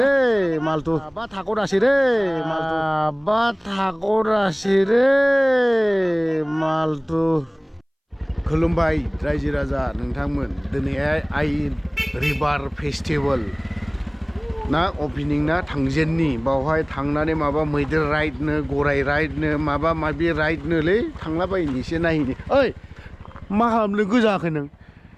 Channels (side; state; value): both; identical; correlation 1.00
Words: রে মালতু বা ঠাকুর আসি রে মালতু বা ঠাকুর আসি রে মালতু खुलुमबाय रायजो राजा नोंथांमोन दिनैहाय आइ रिभार फेस्टिवल ना ओपनिं ना थांजेननि बावहाय थांनानै माबा मैदेर राइडनो गराय राइडनो माबा माबि राइडनोलै थांलाबायनि एसे नायनि ओइ मा खालामनो गोजाखै नों